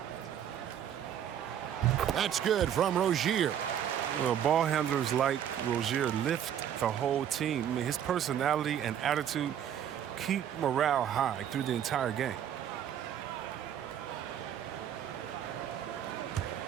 That's good from Rozier. Well, ball handlers like Rozier lift the whole team. I mean, his personality and attitude keep morale high through the entire game.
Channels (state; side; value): quieter; left; 9.7 dB